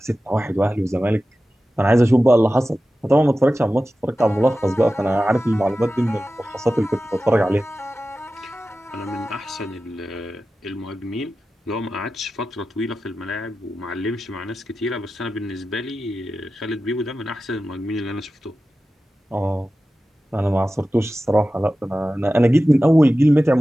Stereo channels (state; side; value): normal; both; correlation 0.94